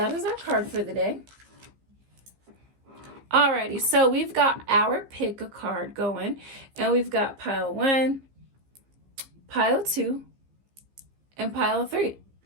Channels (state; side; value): late; left; 15 ms